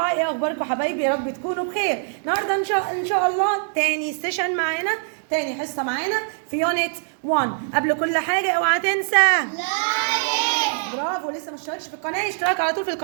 ايه اخباركم حبايبي؟ يا رب تكونوا بخير. النهارده ان شاء الله تاني سيشن معانا، تاني حصة معانا في يونت 1. قبل كل حاجة اوعى تنسى لايك. برافو، لسه ما اشتركش في القناة يشترك على طول في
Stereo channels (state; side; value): silent; left; digital silence